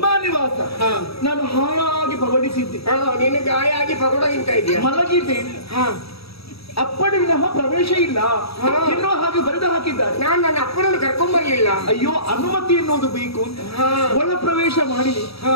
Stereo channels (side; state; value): right; late; 0.77 ms